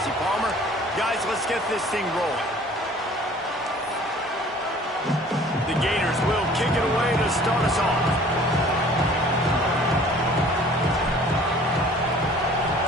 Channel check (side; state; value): both; normal; correlation 0.51